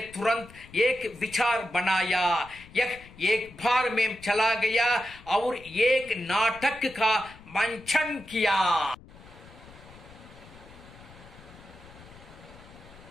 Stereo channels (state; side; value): noise; left; rumble, 21 dB below the sound